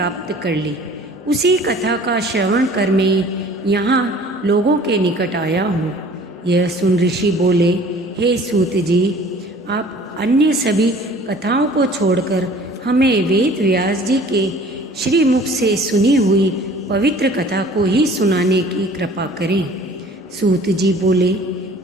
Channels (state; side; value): normal; both; correlation 0.49